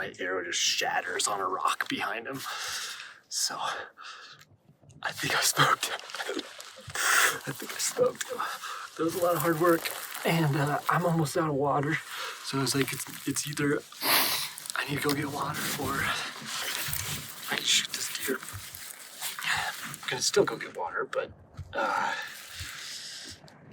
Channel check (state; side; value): identical; both; correlation 1.00